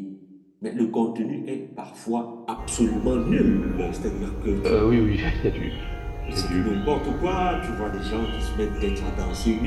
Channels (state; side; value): identical; both; correlation 1.00